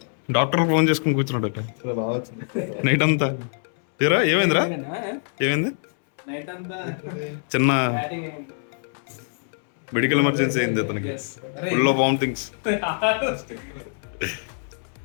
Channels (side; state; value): right; silent; 62 dB below the other